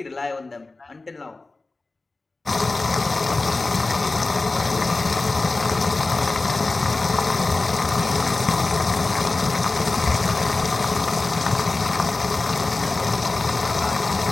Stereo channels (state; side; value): quieter; right; 3.4 dB